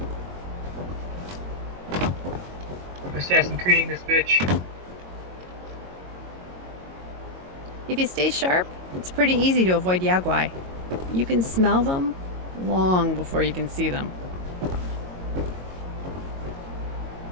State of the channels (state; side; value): late; left; 22 ms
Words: Assassin creating this bitch. If you stay sharp, it's pretty easy to avoid Yaguai. You can smell them long before you can see them.